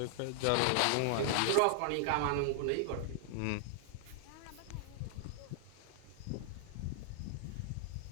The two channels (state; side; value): different; both; correlation 0.00